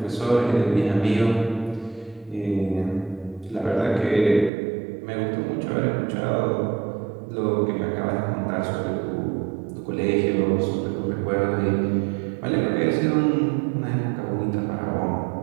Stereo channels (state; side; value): drops out; left; at 4.5 s